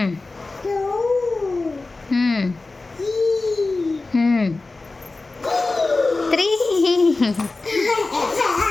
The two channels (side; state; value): right; quieter; 3.4 dB